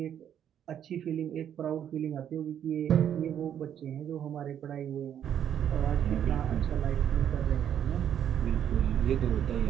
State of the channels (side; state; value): left; quieter; 9.6 dB